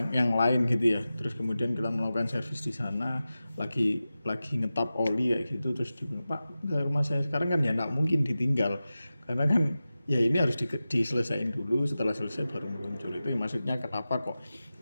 yang lain gitu ya, terus kemudian kita melakukan servis di sana, lagi ngetap oli kayak gitu, terus dibilang Pak ke rumah saya sekarang, kan ya nggak mungkin ditinggal karena kan ya ini harus diselesaikan dulu, setelah selesai baru muncul. Itu yang maksudnya kenapa kok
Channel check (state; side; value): inverted; both; correlation -0.94